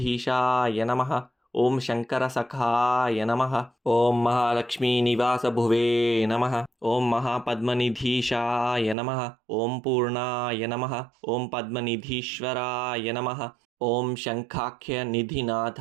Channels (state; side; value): drops out; left; at 9.0 s